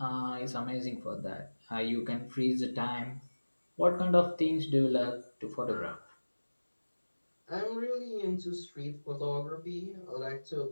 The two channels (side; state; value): both; inverted; correlation -1.00